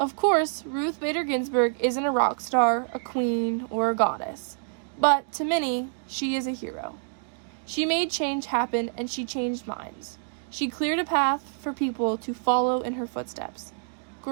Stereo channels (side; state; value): left; silent; digital silence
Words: course, Ruth Bader Ginsburg isn't a rock star, a queen, or a goddess, but to many, she is a hero. She made change happen, and she changed minds. She cleared a path for people to follow in her footsteps.